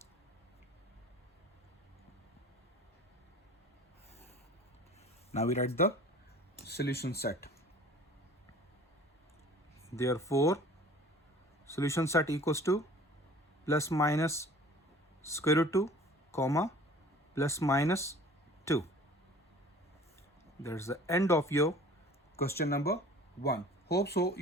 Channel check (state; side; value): normal; both; correlation 0.47